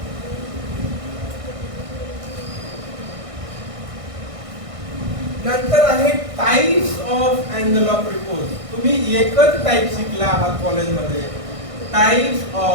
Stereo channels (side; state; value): left; late; 1.6 ms